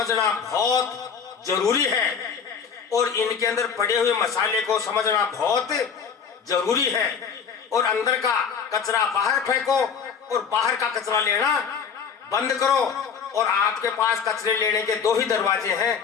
बहुत जरूरी है और इनके अंदर पड़े हुए मसाले को समझना बहुत जरूरी है। और अंदर का कचरा बाहर फेंको और बाहर का कचरा लेना बंद करो। और आपके पास कचरे लेने के 2 ही दरवाजे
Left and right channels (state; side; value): quieter; right; 6.7 dB